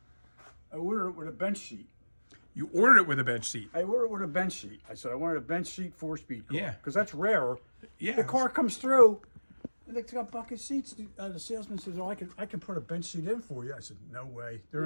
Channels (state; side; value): inverted; both; correlation -1.00